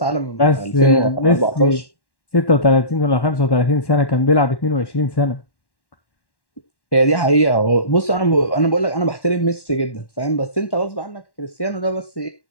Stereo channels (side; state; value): right; late; 1.1 ms